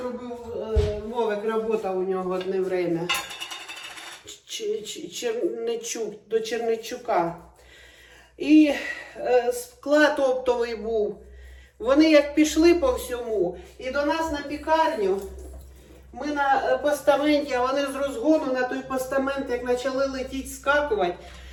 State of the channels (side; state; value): both; identical; correlation 1.00